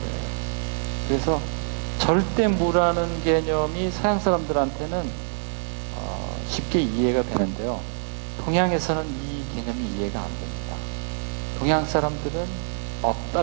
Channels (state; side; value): silent; left; digital silence